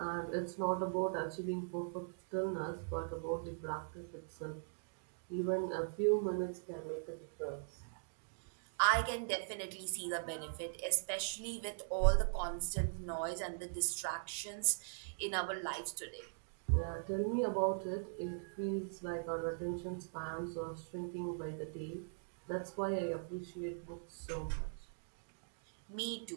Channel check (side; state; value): left; silent; digital silence